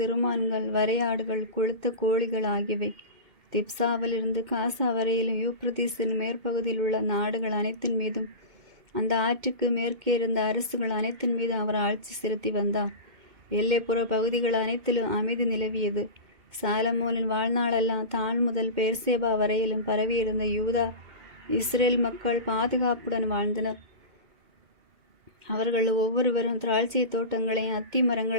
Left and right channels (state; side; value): late; left; 2.2 ms